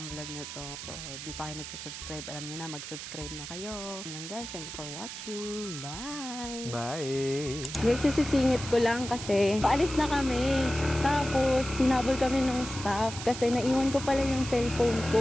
vlog na to. So di pa kayo nagsusubscribe, alam niyo na, mag-subscribe na kayo. Yun lang guys, thank you for watching. Bye! Bye! Guys, sisingit ko lang kasi paalis na kami. Tapos sinabol kami ng staff kasi naiwan ko pala yung cellphone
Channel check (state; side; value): noise; right; hiss, 9 dB below the sound